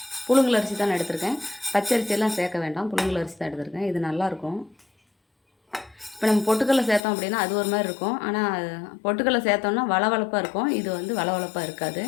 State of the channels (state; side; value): drops out; right; at 7.0 s